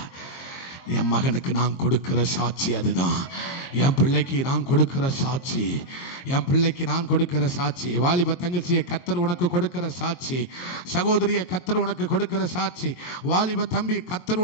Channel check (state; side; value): late; right; 22 ms